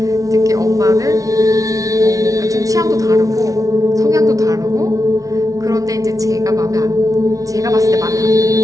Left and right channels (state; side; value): late; left; 0.17 ms